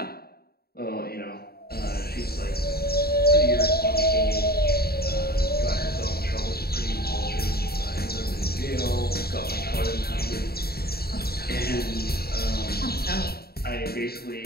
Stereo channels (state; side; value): late; right; 0.45 ms